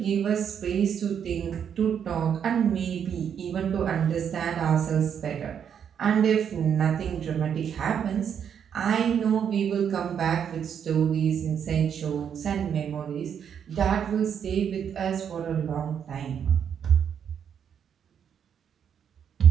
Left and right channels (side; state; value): left; quieter; 8.1 dB